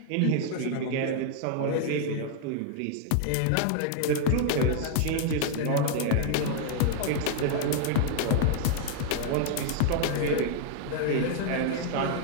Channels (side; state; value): both; different; correlation 0.00